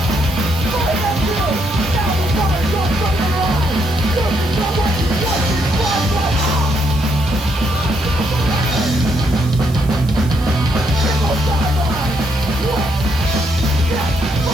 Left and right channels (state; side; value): noise; right; hiss, 20 dB below the sound